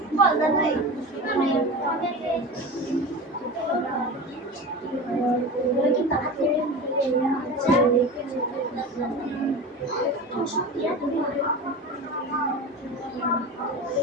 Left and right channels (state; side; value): normal; both; correlation 0.30